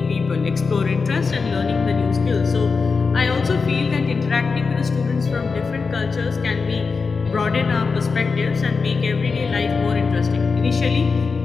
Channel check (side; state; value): right; quieter; 4.8 dB